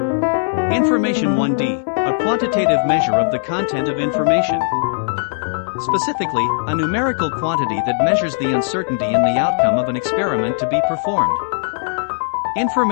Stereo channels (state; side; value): silent; right; 63 dB below the other